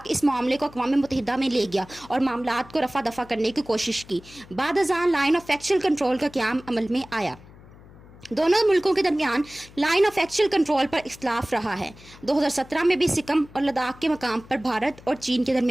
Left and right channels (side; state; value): left; noise; hum, 22 dB below the sound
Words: इस मामले को अक़वाम मुत्तहिदा में ले गया और मामलात को रफा दफा करने की कोशिश की। बाद अज़ान लाइन ऑफ एक्चुअल कंट्रोल का क़याम अमल में आया। दोनों मुल्कों के दरमियान लाइन ऑफ एक्चुअल कंट्रोल पर इख्तलाफ रहा है। 2017 में भी सिक्किम और लद्दाख के मकाम पर भारत और चीन के